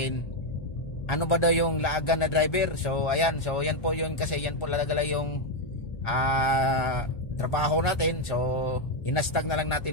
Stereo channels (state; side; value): late; right; 1.4 ms